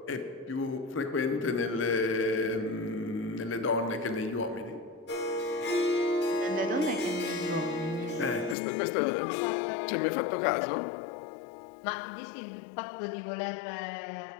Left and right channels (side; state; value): right; drops out; at 8.6 s